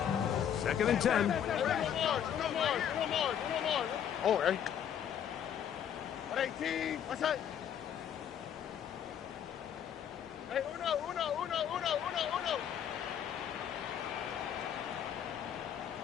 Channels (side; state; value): right; quieter; 9.1 dB